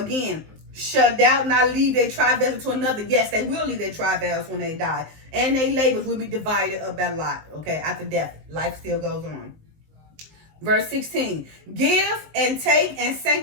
shall thou not leave their travails to another? Yes, they will leave their travails when they die. And their labors will be divided up by lot. Okay, after death, life still goes on. Verse 16, give and take and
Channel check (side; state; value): left; late; 19 ms